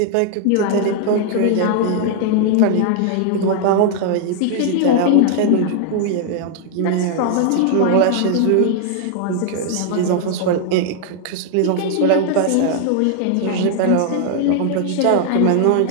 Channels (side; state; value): both; different; correlation 0.00